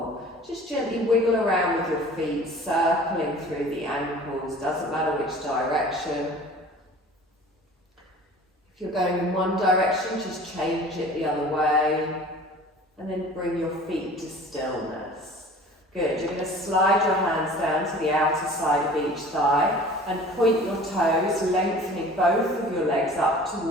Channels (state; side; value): normal; both; correlation 0.44